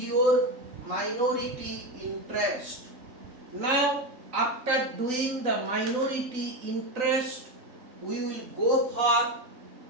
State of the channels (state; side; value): late; left; 3.9 ms